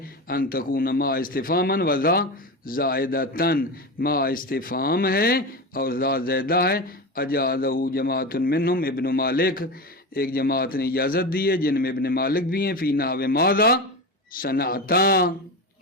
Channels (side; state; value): both; normal; correlation 0.22